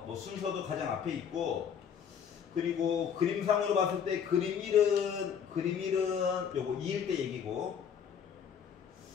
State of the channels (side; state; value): right; quieter; 7.7 dB